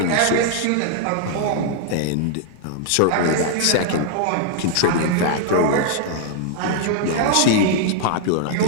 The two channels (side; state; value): both; different; correlation 0.00